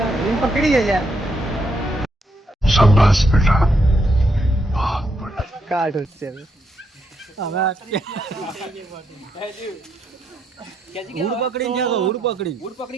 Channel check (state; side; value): normal; both; correlation 0.78